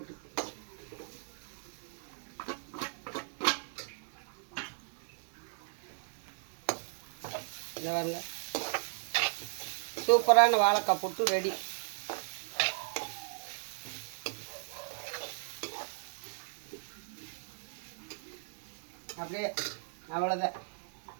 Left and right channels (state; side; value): silent; left; digital silence